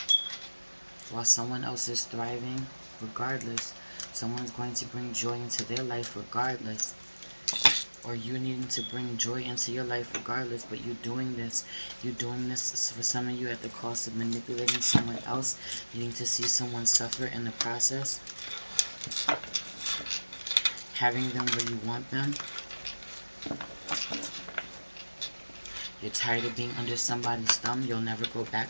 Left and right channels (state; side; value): inverted; both; correlation -1.00